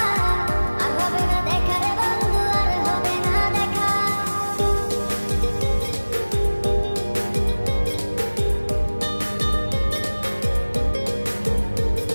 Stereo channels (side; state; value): both; inverted; correlation -1.00